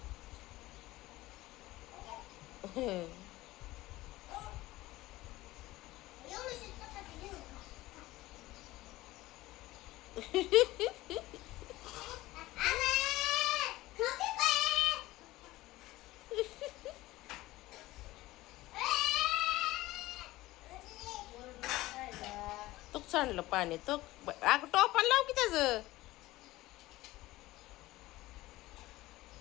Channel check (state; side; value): quieter; right; 17.9 dB